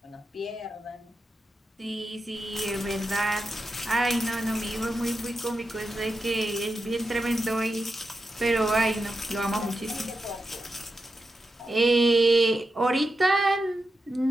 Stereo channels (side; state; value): both; normal; correlation 0.89